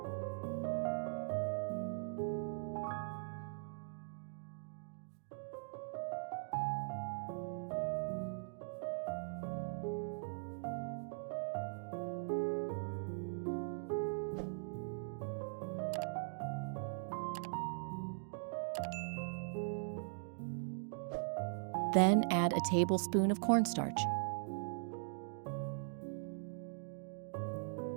Then add a tablespoon of cornstarch.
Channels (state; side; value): silent; left; digital silence